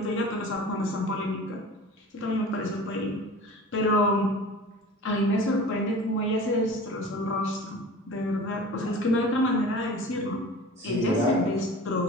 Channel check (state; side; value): normal; both; correlation 0.39